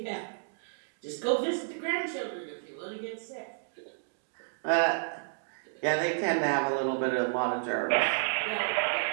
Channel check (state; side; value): silent; left; digital silence